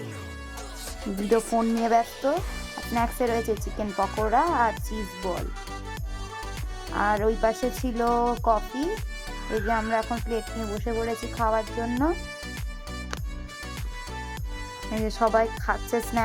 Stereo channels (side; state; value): both; identical; correlation 1.00